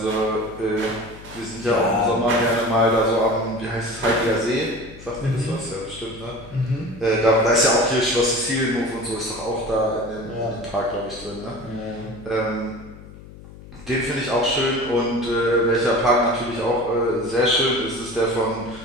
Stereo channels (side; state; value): left; noise; hum, 18 dB below the sound